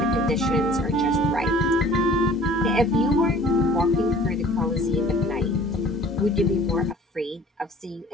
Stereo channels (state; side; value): normal; both; correlation 0.49